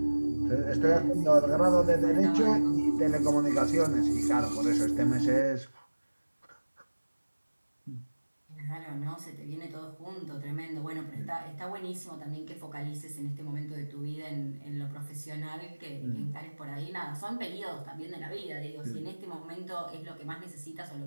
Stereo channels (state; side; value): inverted; both; correlation -1.00